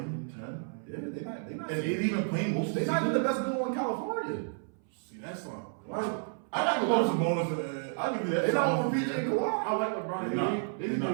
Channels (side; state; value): left; silent; 57 dB below the other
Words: 10. Yeah, they not. And they even playing most of the They not even season. the best duo in California. See, that's not. I got to love some bonus. I give you that. They not over PJ and Kawhi. I like LeBron. They not.